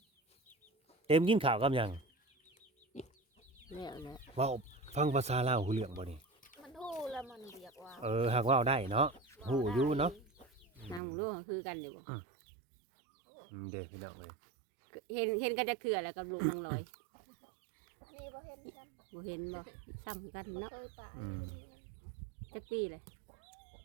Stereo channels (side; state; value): left; drops out; at 11.0 s